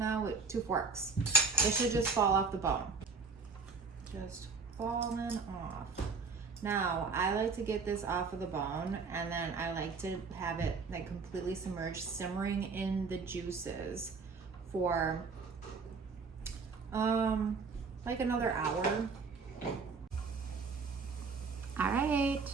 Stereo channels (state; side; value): quieter; left; 4.6 dB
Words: with 2 forks. It should just fall off the bone. Just falling off. Now, I like to get this off of the bone and then I like to have it like completely submerged, simmering in the juices for like another hour. All right,